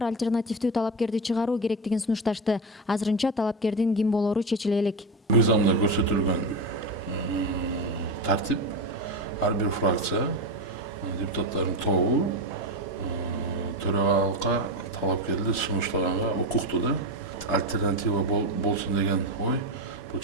альтернативдүү талапкерди чыгаруу керектигин сунушташты. Азырынча талапкердин ким болору чечиле элек. Мыйзамда көрсөтүлгөн тартип ар бир фракция депутаттардын тобу төрагалыкка талапкерди сунуштаганга укуктуу да. Альтернатива болсун деген ой бул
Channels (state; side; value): normal; both; correlation 0.17